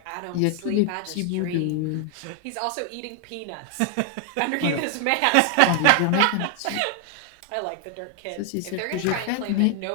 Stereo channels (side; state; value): both; different; correlation 0.00